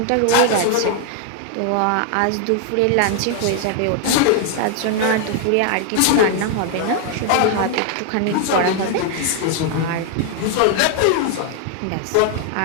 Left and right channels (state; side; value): different; both; correlation 0.00